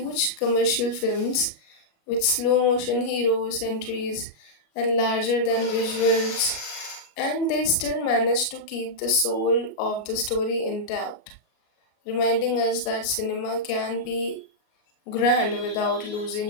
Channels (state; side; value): late; right; 33 ms